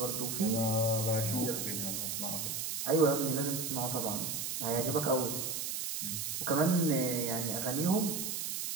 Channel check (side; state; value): right; noise; hiss, 3 dB below the sound